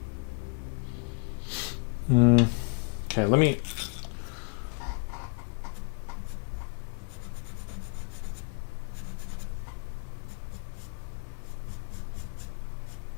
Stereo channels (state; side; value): quieter; right; 36.6 dB